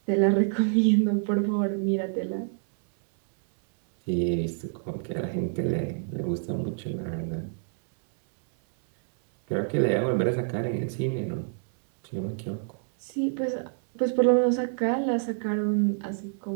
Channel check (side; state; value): left; silent; 60 dB below the other